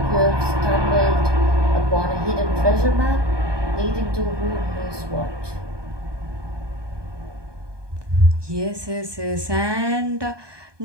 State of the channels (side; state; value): left; late; 1.2 ms